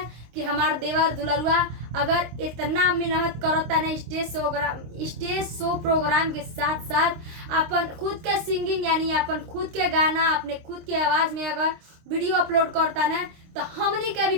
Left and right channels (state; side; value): late; left; 26 ms